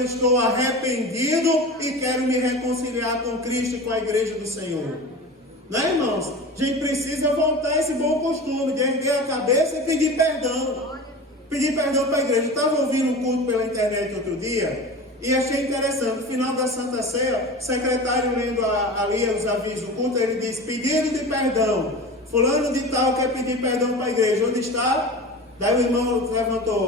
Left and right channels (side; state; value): both; normal; correlation 0.32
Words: estou arrependido e quero me reconciliar com Cristo e com a igreja do Senhor. Né, irmãos? A gente precisa voltar a esse bom costume de erguer a cabeça e pedir perdão. Pedir perdão para a igreja. Eu estava ouvindo um culto pela internet outro dia e achei interessante. No final da Santa Ceia, o secretário lendo ali os avisos do culto, ele disse, pedido de perdão. Fulano de tal quer pedir perdão para a igreja. Onde está? Daí o irmão